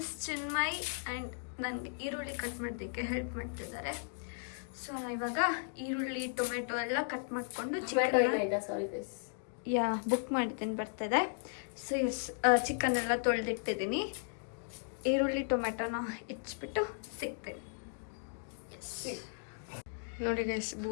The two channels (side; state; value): right; silent; digital silence